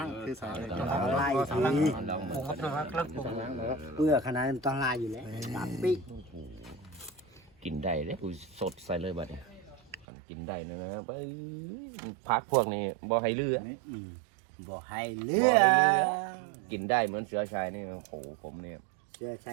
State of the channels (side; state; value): left; drops out; at 10.1 s